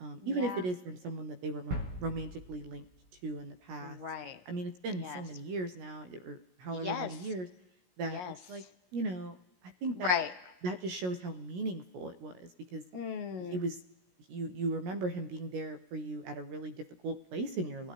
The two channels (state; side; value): late; left; 17 ms